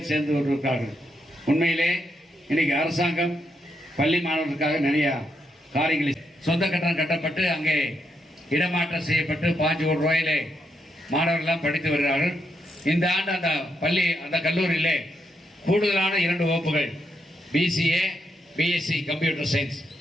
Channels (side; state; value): both; normal; correlation 0.80